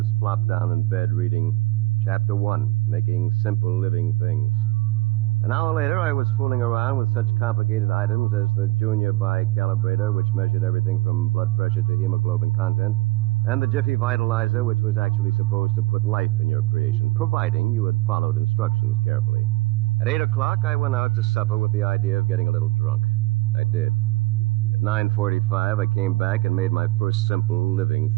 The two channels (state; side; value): quieter; left; 20.2 dB